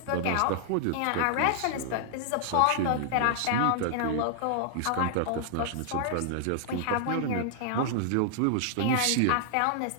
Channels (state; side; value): different; both; correlation 0.00